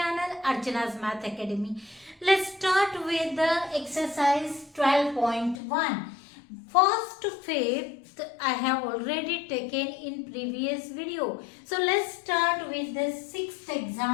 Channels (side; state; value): right; drops out; at 5.6 s